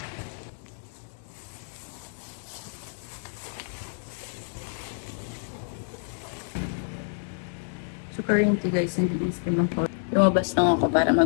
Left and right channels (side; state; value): right; silent; digital silence